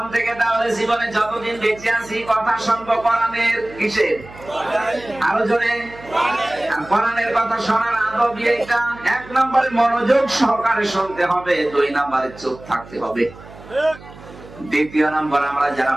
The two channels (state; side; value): noise; right; hum, 19 dB below the sound